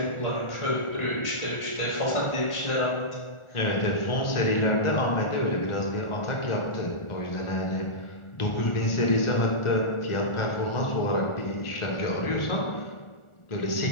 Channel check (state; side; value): late; right; 1.4 ms